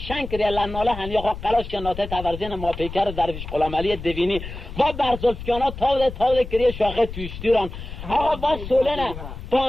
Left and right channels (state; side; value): noise; left; rumble, 10 dB below the sound